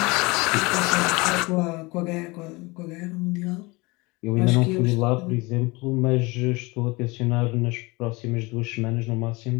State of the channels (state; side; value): quieter; right; 24.6 dB